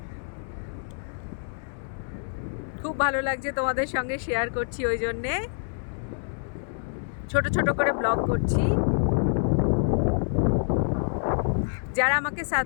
খুব ভালো লাগছে, তোমাদের সঙ্গে শেয়ার করছি, ওই জন্যে ছোট ছোট করে ব্লগ করছি। যারা আমাকে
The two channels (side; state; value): right; silent; 60 dB below the other